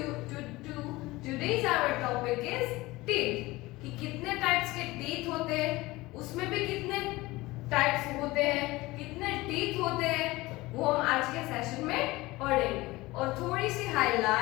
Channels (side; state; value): right; quieter; 20.2 dB